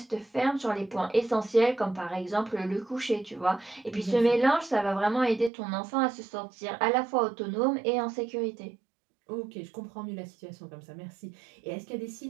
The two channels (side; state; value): left; drops out; at 5.5 s